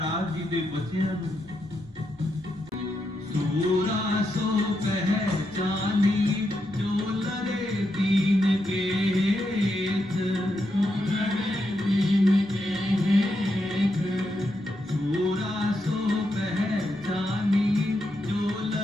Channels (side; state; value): both; normal; correlation 0.83